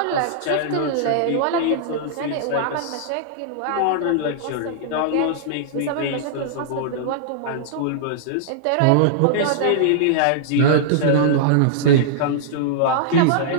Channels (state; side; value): different; both; correlation -0.02